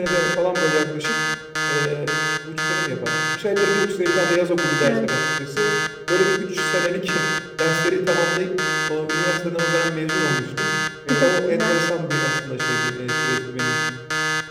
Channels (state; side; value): identical; both; correlation 1.00